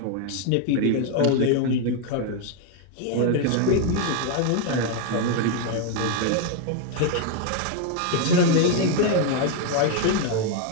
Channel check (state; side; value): different; both; correlation 0.00